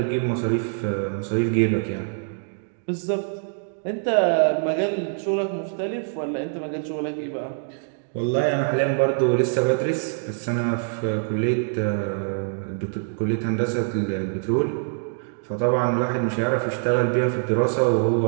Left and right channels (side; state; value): left; silent; digital silence